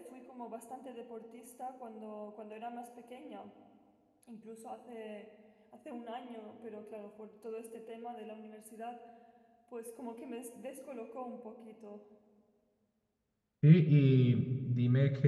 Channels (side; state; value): both; identical; correlation 1.00